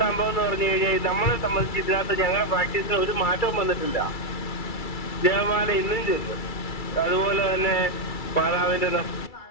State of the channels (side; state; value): right; late; 2.3 ms